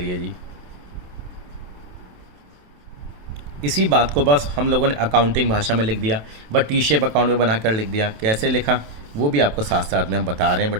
जी, इसी बात को बस हम लोगों ने अकाउंटिंग भाषा में लिख दिया, बट टी शेप अकाउंट में बनाकर लिख दिया। कैसे लिखा वो भी आपको साथ साथ में हम बता रहे हैं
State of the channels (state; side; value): late; left; 27 ms